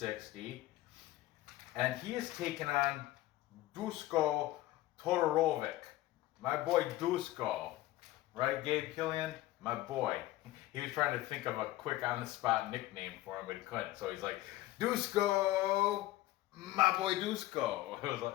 and he is taking on Dusko Todorovic, my boy Dusko, right, Gabe Killian, my boy. He was trying to think of a quick on-the-spot nickname for him, but he couldn't. So he's like, Dusko, my boy Dusko. It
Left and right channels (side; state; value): right; quieter; 16.5 dB